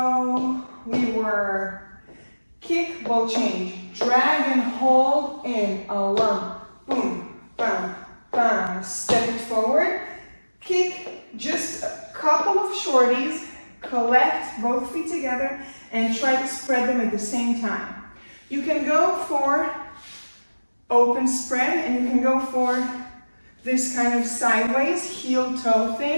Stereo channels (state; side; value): inverted; both; correlation -1.00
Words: we were kick, ball change, drag and hold in a lump, boom, bam, bam, step it forward, kick, just a couple of shorties, collect both feet together and try to spread them at the same time. You can go for open spread and you can go for this kind of sideways heel toe